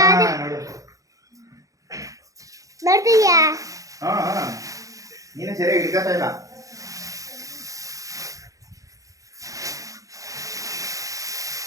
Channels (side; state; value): left; late; 0.16 ms